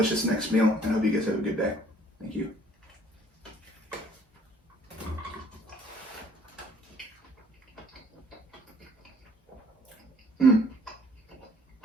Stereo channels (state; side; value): normal; both; correlation 0.58